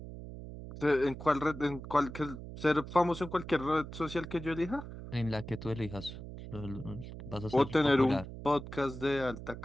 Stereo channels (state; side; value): noise; right; hum, 11 dB below the sound